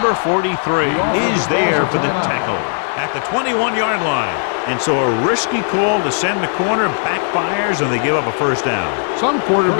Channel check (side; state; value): right; silent; digital silence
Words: 43 is there for the tackle at the 21-yard line. And so a risky call to send the corner backfires, and they give up a first down. Some